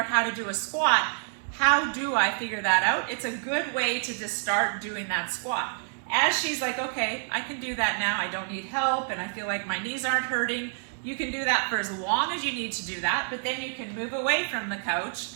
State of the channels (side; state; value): left; silent; 59 dB below the other